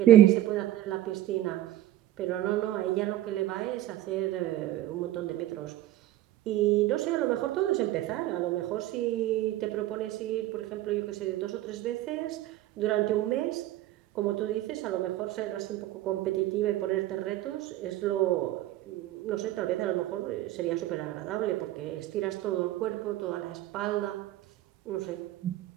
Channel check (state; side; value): quieter; left; 14.2 dB